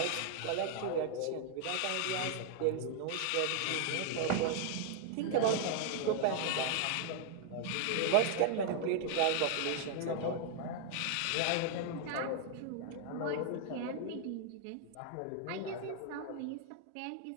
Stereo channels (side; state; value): both; different; correlation 0.00